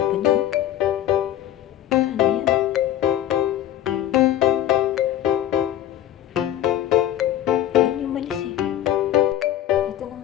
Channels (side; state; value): right; quieter; 12.1 dB